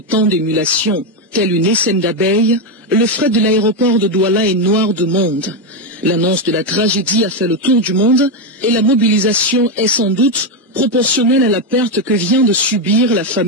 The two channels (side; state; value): both; normal; correlation 0.06